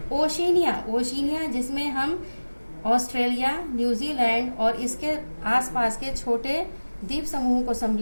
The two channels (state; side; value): inverted; both; correlation -1.00